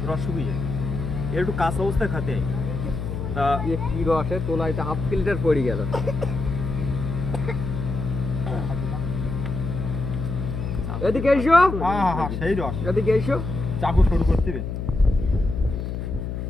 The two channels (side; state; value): left; noise; hum, 4 dB below the sound